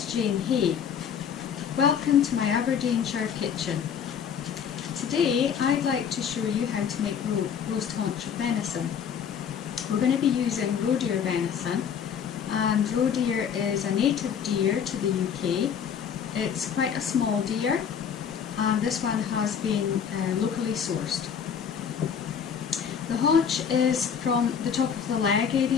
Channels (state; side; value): quieter; right; 7.6 dB